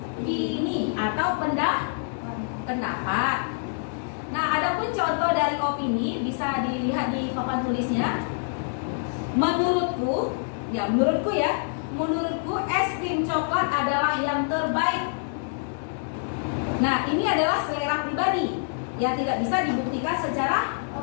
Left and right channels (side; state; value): right; silent; digital silence